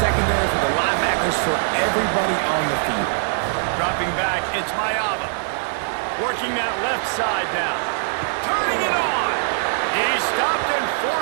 secondary, for the linebackers, for everybody on the field. Dropping back, it's Mayava. Working that left side now. Turning it on. He stopped and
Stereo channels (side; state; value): left; silent; digital silence